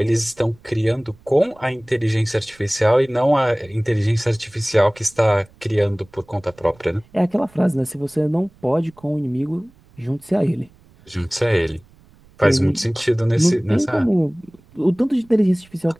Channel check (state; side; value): noise; right; rumble, 28 dB below the sound